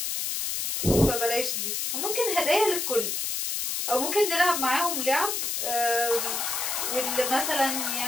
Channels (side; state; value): left; noise; hiss, 1 dB below the sound